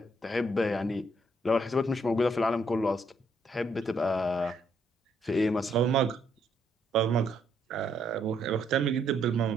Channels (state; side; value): normal; both; correlation 0.72